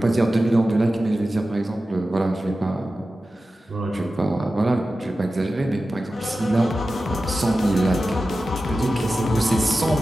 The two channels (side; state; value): both; normal; correlation 0.94